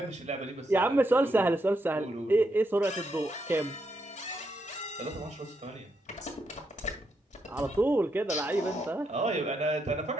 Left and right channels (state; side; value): normal; both; correlation 0.80